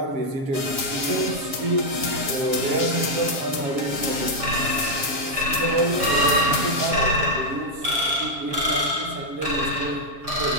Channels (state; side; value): late; left; 7.2 ms